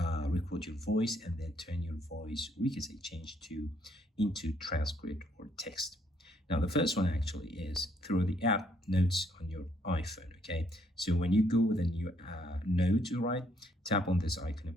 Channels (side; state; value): both; normal; correlation 0.69